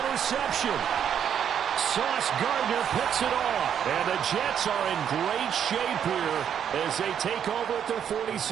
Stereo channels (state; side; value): quieter; left; 8.7 dB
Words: interception. Sauce Gardner picks it off. And the Jets are in great shape here as they take over at their